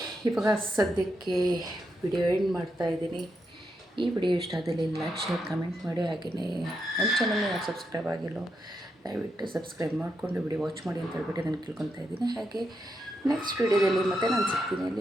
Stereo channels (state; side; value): normal; both; correlation 0.83